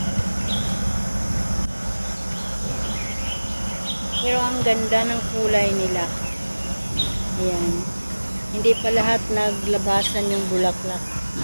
Pero ang ganda ng kulay nila. Ayan. Hindi pa lahat naglabasan yung bulaklak.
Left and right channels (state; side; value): inverted; both; correlation -1.00